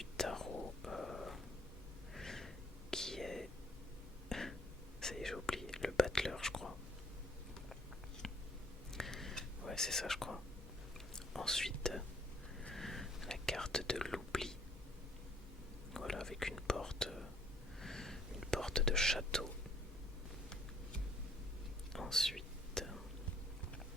tarot qui est... Ça y est, j'ai oublié, le battleur je crois. Ouais, c'est ça je crois. Ensuite, la carte de l'oubli. Voilà, avec une porte de château. Ensuite,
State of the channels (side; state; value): both; normal; correlation 0.62